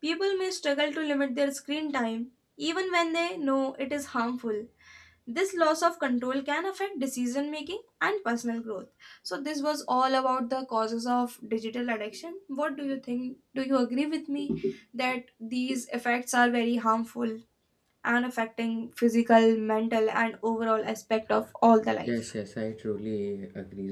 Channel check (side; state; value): both; identical; correlation 1.00